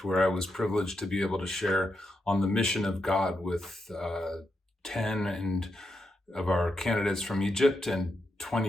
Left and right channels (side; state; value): both; normal; correlation 0.84